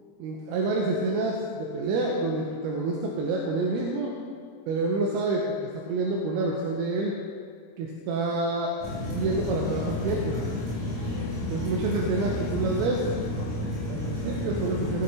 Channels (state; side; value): late; left; 25 ms